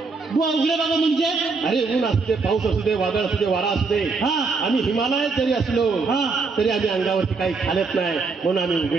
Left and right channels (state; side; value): quieter; left; 4.4 dB